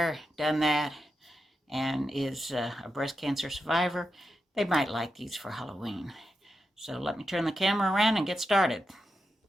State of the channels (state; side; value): normal; both; correlation 0.88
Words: done that, and is a breast cancer survivor, they might like these for Halloween. So let me turn the camera around and get started.